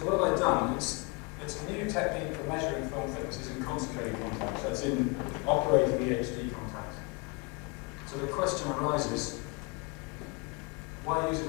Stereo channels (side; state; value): right; quieter; 29.8 dB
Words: what have I done? It's a new technique for measuring film thicknesses in concentrated contacts. That's in operating EHD contacts. So the question arises, why use